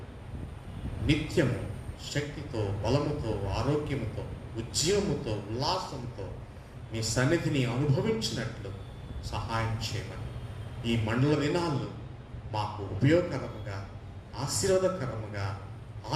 నిత్యము శక్తితో, బలముతో, ఆరోగ్యముతో, ఉద్యమముతో, ఉల్లాసంతో మీ సన్నిధిని అనుభవించినట్లు సహాయం చేయమని ఈ మండల దినాల్లో మాకు ఉపయోగకరముగా, ఆశీర్వాదకరముగా,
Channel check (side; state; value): both; identical; correlation 1.00